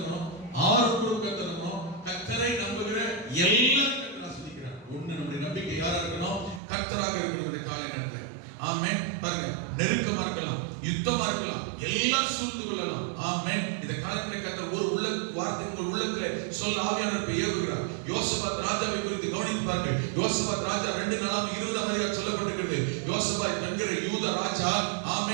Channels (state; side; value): drops out; left; at 6.6 s